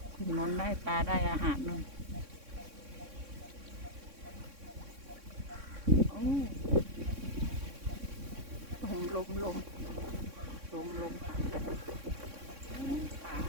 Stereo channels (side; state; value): left; late; 3.6 ms